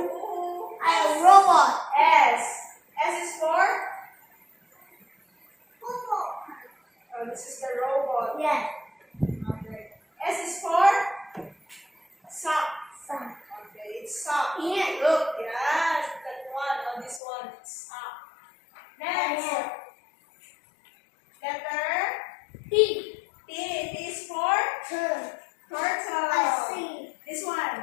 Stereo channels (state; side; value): drops out; right; at 17.2 s